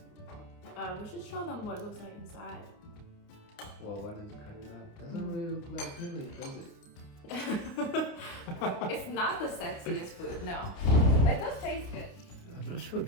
We should show them what it looks like inside. Well, why does it cut it out? Doesn't really look like peeling, does it? It's not the sexiest food, no. But it does taste good. I'm not sure if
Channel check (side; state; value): right; late; 29 ms